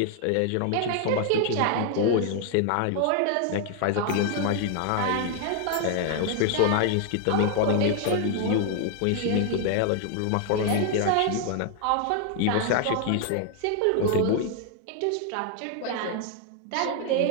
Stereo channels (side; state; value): both; different; correlation 0.00